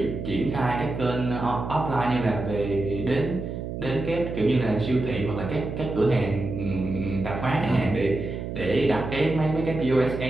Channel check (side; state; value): right; noise; hum, 6 dB below the sound